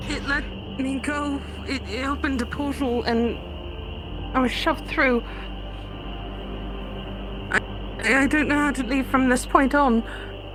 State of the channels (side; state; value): both; identical; correlation 1.00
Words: it let me go. It opened a portal and I was shoved through. I don't know how to leave from this point on.